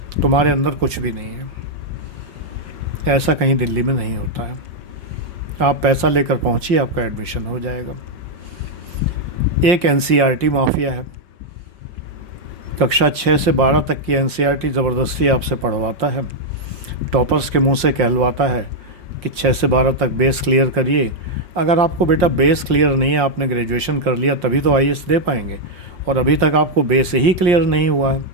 तुम्हारे अंदर कुछ भी नहीं है। ऐसा कहीं दिल्ली में नहीं होता है। आप पैसा लेकर पहुंचिए, आपका एडमिशन हो जाएगा। एक एनसीईआरटी माफिया है। कक्षा 6 से 12 तक की एनसीईआरटी ज़बरदस्ती आपसे पढ़वाता है। टॉपर्स के मुंह से कहलवाता है कि 6 से 12 तक बेस क्लियर करिए। अगर आपको बेटा बेस क्लियर नहीं है, आपने ग्रेजुएशन कर लिया तभी तो आईएएस दे पाएंगे, और अभी तक आपको बेस ही क्लियर नहीं हुआ है।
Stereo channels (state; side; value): late; left; 5.6 ms